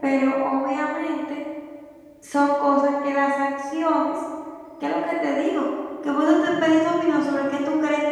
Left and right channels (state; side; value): identical; both; correlation 1.00